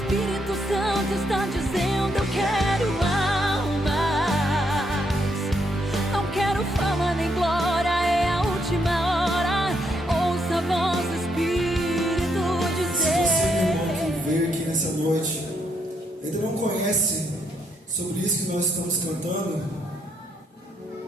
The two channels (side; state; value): both; normal; correlation 0.76